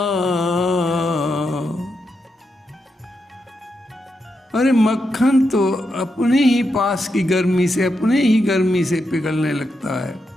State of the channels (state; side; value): normal; both; correlation 0.84